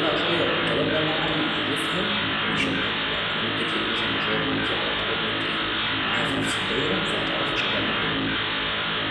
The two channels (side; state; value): both; identical; correlation 1.00